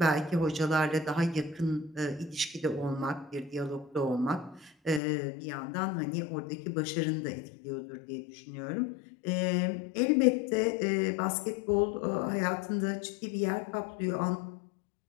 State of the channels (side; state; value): right; drops out; at 5.0 s